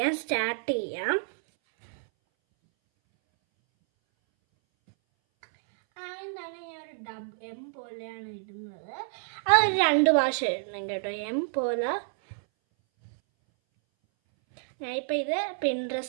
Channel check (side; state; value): left; silent; 59 dB below the other